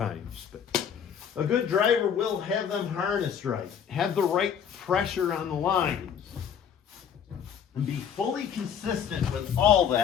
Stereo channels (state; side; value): quieter; right; 8.0 dB